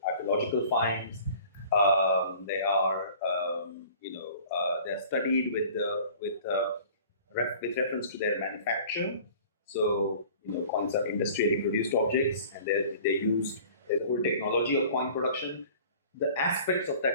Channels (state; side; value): inverted; both; correlation -0.47